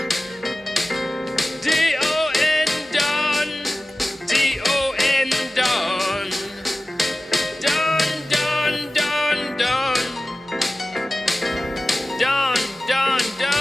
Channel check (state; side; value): normal; both; correlation 0.96